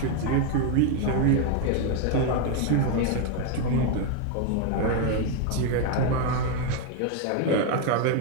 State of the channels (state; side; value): different; both; correlation 0.01